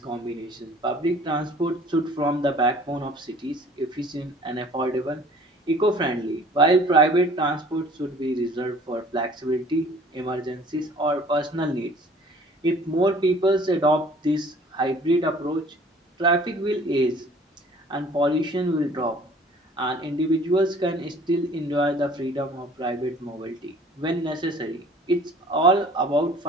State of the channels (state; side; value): normal; both; correlation 0.51